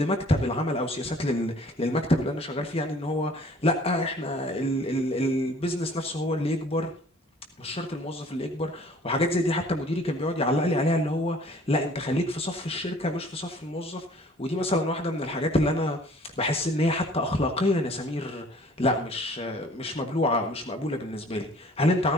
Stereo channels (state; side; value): normal; both; correlation 0.53